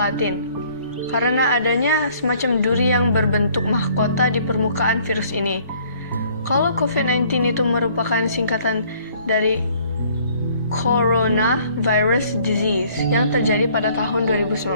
karena adanya semacam duri yang berbentuk mahkota di permukaan virus ini. Kalau COVID-19 itu merupakan singkatan dari Coronavirus Disease yang terjadi pada tahun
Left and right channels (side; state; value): both; inverted; correlation -0.59